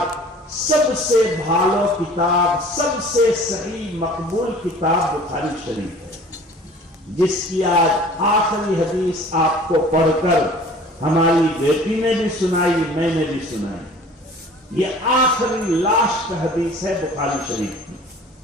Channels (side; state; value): both; normal; correlation 0.47